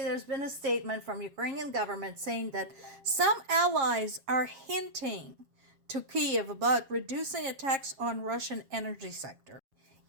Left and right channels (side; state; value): left; late; 7.4 ms